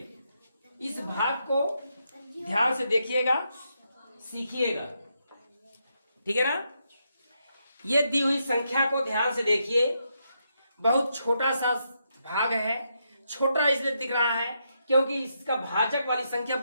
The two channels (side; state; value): both; inverted; correlation -0.81